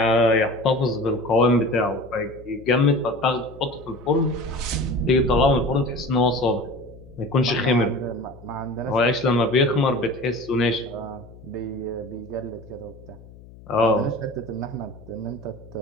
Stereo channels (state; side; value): noise; left; hum, 20 dB below the sound